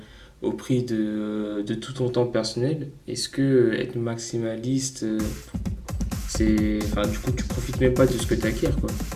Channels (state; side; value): identical; both; correlation 1.00